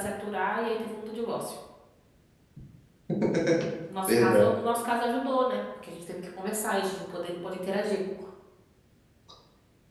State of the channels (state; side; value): identical; both; correlation 1.00